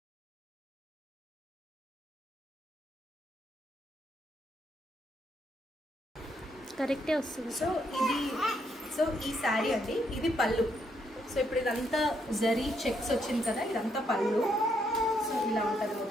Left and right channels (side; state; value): both; normal; correlation 0.75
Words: కరెక్టే వస్తుంది. సో ఈ శారీ అండి, ఇది పళ్ళు. సో ఇప్పుడు ఇదంతా జరీ చెక్స్ వచ్చింది కదా, ఇదంతా పళ్ళు. సో ఇలా ఉంటుంది